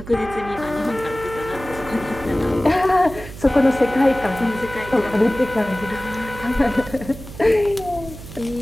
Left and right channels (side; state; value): right; noise; hum, 14 dB below the sound